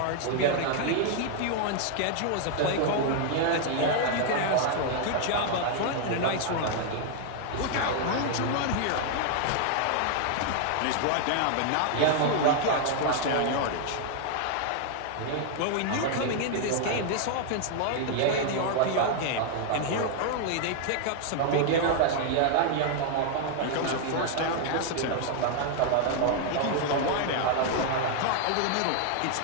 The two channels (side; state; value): both; different; correlation 0.00